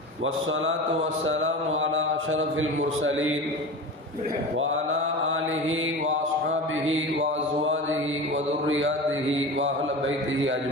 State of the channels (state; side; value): normal; both; correlation 0.30